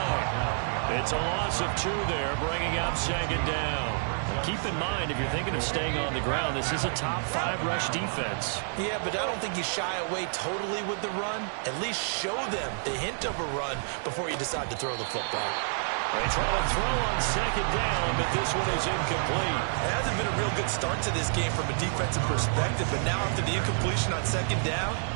It's a loss of 2 there, bringing up 2nd down. Keep in mind, if you're thinking of staying on the ground, this is a top 5 rush defense. Yeah, but I don't think you shy away totally with the run. At least show them the hint of a run before you decide to throw the football. They try to throw on 2nd down, but this one is incomplete. It hasn't been a real good start to this game from a defensive perspective, but now after the incompletion on 2nd down,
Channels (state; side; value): silent; left; 59 dB below the other